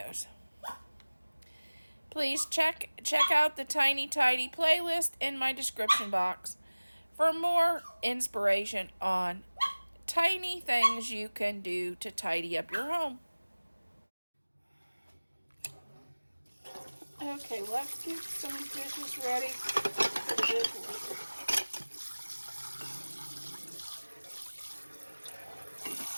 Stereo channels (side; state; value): both; inverted; correlation -1.00